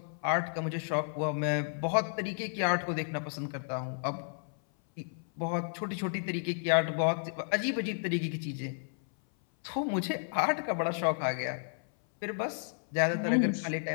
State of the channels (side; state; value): right; silent; 56 dB below the other